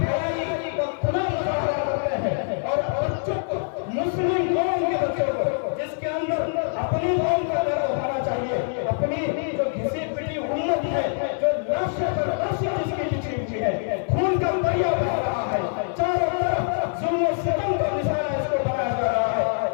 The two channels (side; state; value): right; silent; digital silence